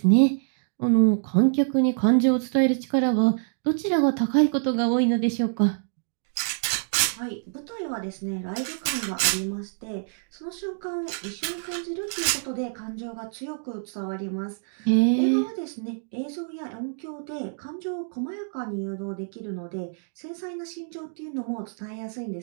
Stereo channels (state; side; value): silent; left; digital silence